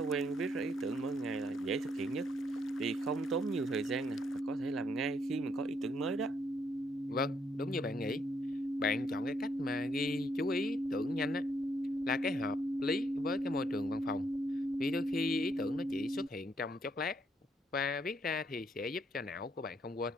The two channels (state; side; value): normal; both; correlation 0.73